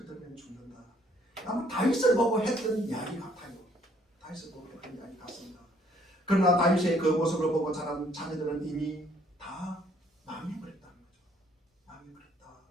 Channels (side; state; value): both; normal; correlation 0.64